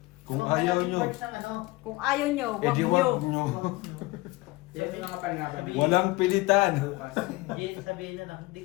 Kung So, ayaw malaking nyo, parts ng ano, Kung ayaw nyo, wag edi nyo. wag nyo. wag nyo. Yan yung mga pangalan. Walang pilitan. Hindi, sabihin na lang, hindi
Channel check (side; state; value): right; quieter; 21.7 dB